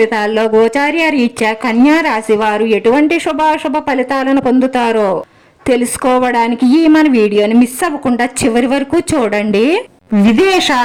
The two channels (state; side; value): identical; both; correlation 1.00